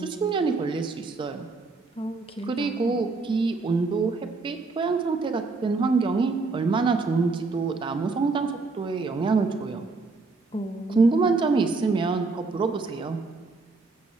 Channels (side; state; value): left; quieter; 3.9 dB